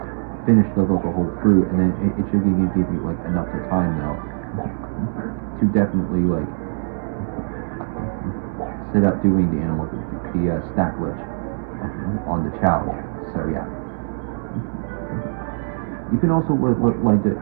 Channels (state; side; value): silent; left; digital silence